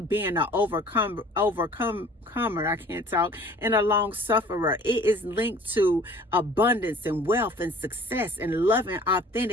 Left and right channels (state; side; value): normal; both; correlation 0.50